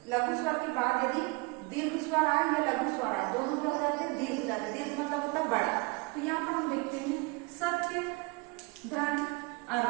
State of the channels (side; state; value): left; quieter; 27.9 dB